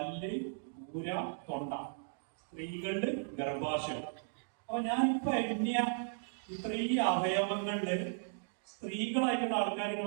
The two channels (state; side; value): silent; left; digital silence